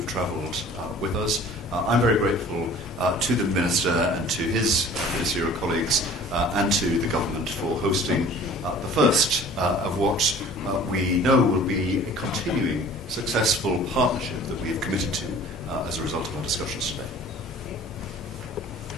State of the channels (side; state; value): both; normal; correlation 0.47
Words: travelled with us. I'm very grateful to the Minister and to his ministerial colleagues and to the government for hosting the first of what we know will be a continuing successful partnership that we have committed to as a result of our discussions today.